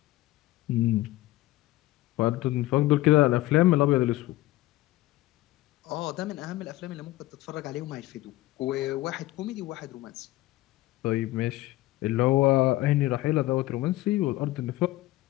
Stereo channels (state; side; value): quieter; right; 17.2 dB